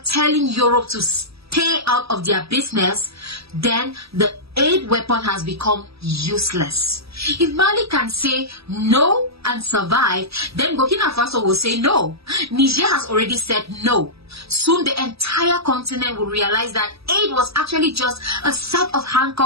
telling Europe to stay out of their business, then the aid weapon has become useless. If Mali can say no and survive, then Burkina Faso will say no. Niger has already said no. Soon the entire continent will realize that aid was actually just a set of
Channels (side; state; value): left; late; 0.77 ms